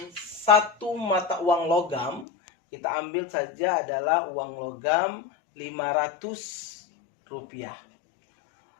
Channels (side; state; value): right; drops out; at 2.2 s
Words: satu mata uang logam. Kita ambil saja adalah uang logam 500 rupiah.